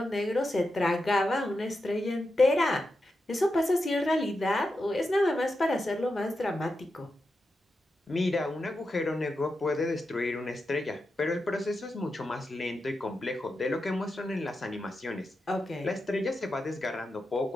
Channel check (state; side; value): normal; both; correlation 0.89